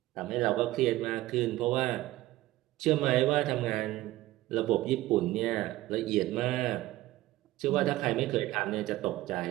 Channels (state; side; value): quieter; left; 16.8 dB